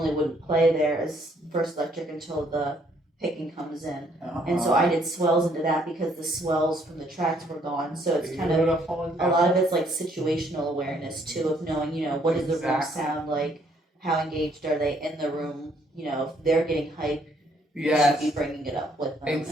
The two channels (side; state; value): both; normal; correlation 0.67